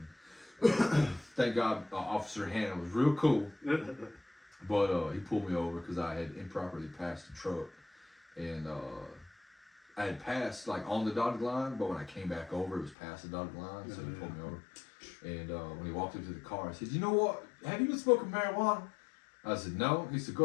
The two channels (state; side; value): drops out; right; at 13.0 s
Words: Thank God, Officer Hannah was real cool. But he pulled me over because I had improperly passed the truck. And I had passed like on the dotted line, but when I came back over, it was past the dotted line, so he pulled me over. And when he walked up to the car, I said, "You know what? Have you been smoking marijuana?" I said, "No." He said,